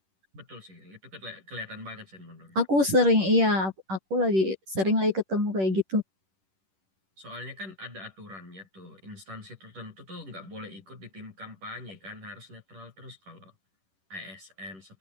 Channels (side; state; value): left; late; 10 ms